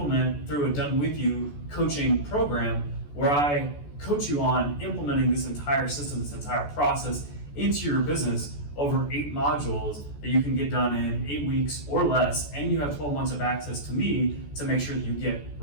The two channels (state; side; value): late; right; 14 ms